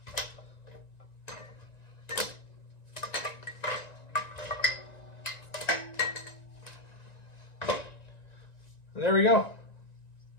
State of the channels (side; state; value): right; late; 1.9 ms